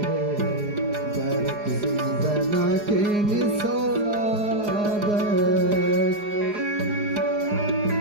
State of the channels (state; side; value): late; left; 4.8 ms